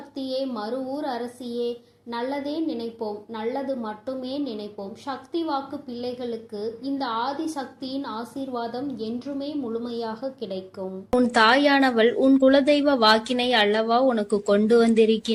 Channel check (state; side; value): identical; both; correlation 1.00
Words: மறுவூர் அரசியே, நல்லதே நினைப்போம், நல்லது மட்டுமே நினைப்போம். சக்தி வாக்கு பிள்ளைகளுக்கு இந்த ஆதி சக்தியின் ஆசீர்வாதம் என்றுமே முழுமையாக கிடைக்கும். உன் தாயானவள் உன் குலதெய்வ வாக்கினை அல்லவா உனக்கு கொண்டு